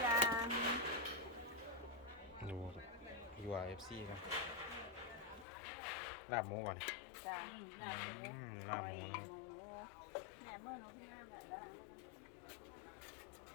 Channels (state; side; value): drops out; right; at 5.5 s